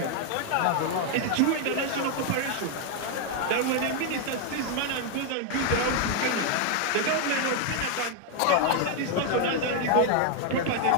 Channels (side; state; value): both; different; correlation 0.00